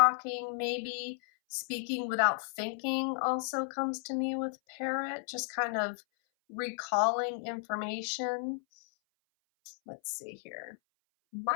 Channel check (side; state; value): right; silent; 55 dB below the other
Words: maybe speaking without thinking also comes to me with parrot, just kind of recalling information. Let's see here.